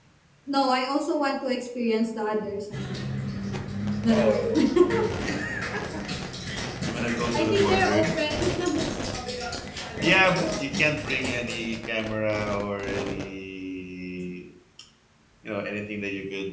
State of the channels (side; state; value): both; identical; correlation 1.00